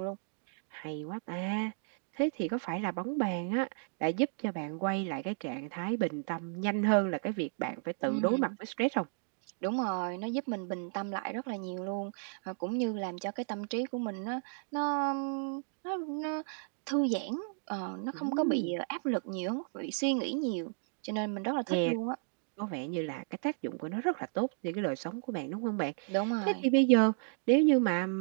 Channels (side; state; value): left; silent; digital silence